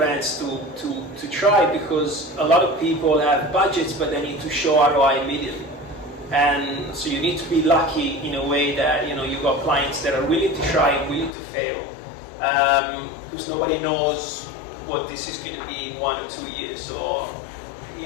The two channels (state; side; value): drops out; right; at 11.3 s